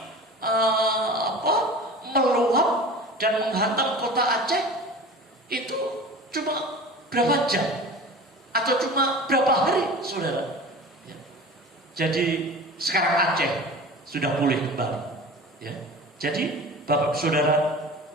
meluap dan menghantam kota Aceh, itu cuma berapa jam atau cuma berapa hari, saudara. Ya. Jadi sekarang Aceh sudah pulih kembali. Ya. Jadi Bapak Saudara,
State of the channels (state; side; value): normal; both; correlation 0.37